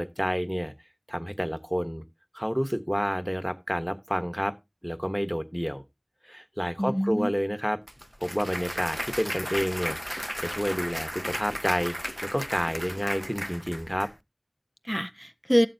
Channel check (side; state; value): both; identical; correlation 1.00